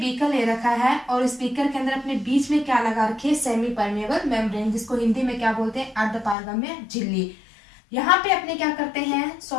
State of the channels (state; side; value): drops out; right; at 6.4 s